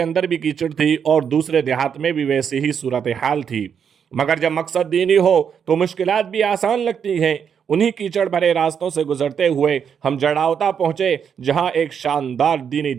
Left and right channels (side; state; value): left; quieter; 7.5 dB